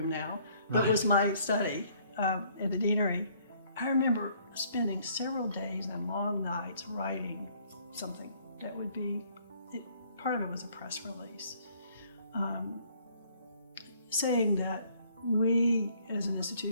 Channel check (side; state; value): both; inverted; correlation -0.62